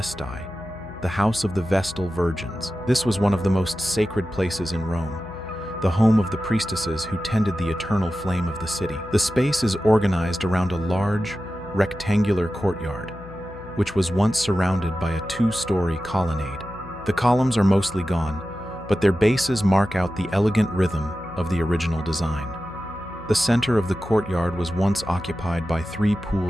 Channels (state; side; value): noise; left; hum, 17 dB below the sound